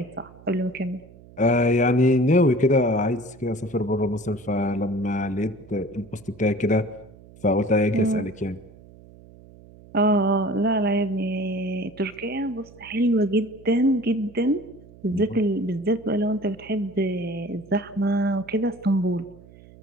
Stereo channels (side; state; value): right; noise; hum, 22 dB below the sound